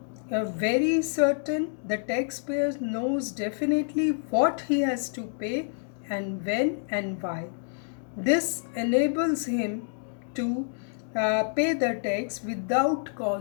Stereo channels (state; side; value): silent; right; digital silence